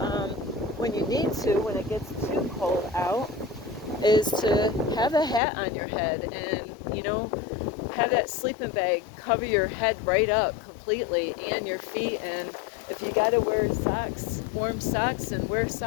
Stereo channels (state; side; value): drops out; right; at 5.4 s